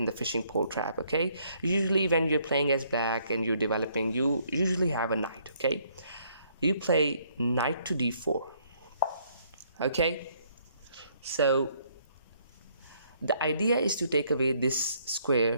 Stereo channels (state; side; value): inverted; both; correlation -0.67